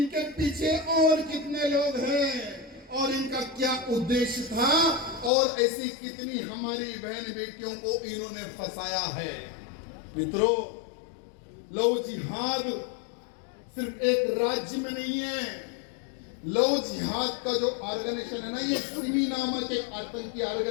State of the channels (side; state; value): right; drops out; at 5.3 s